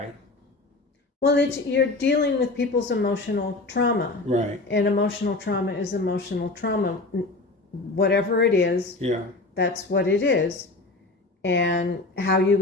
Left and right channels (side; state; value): right; quieter; 3.2 dB